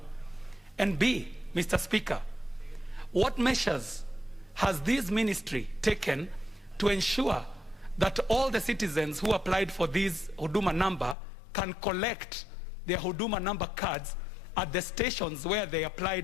And B, Mr. Speaker, what measures has this ministry taken to ensure that all the citizens who applied for this Huduma number can collect their Huduma number cards at the stations where they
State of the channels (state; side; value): drops out; right; at 11.2 s